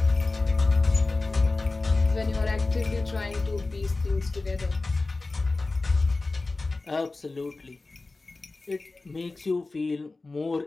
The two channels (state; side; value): quieter; right; 3.4 dB